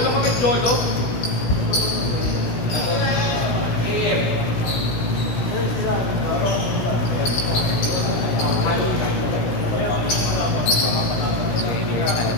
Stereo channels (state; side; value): late; right; 16 ms